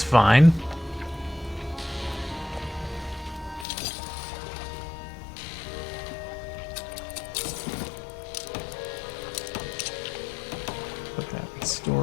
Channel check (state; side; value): drops out; right; at 3.7 s